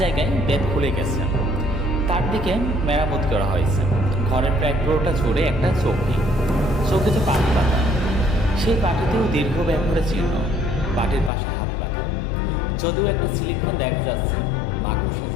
বেত খুলে গেছে, তার দিকে মেরামত করা হয়েছে। ঘরের প্রায় পুরোটা জুড়ে একটা চৌকিতে পাটি পাতা, সেই পাটিতেও দীর্ঘ ব্যবহারের চিহ্ন। পাটির পাশে হাত পাখা, যদিও একটা সিলিং ফ্যান দেখা যাচ্ছে, মাকড়সে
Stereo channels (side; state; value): right; drops out; at 11.3 s